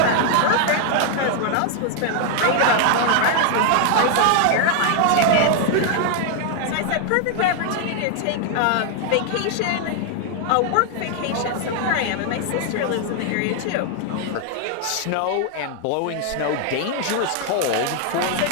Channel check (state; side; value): different; both; correlation 0.00